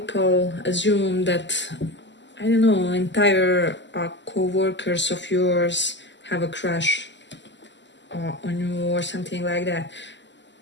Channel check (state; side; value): late; right; 0.53 ms